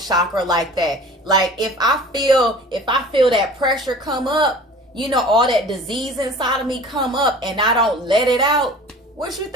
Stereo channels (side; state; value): both; normal; correlation 0.43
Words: like that. Like if I feel that pressure come up, you know, all that disease inside of me come up and I don't let it out, what you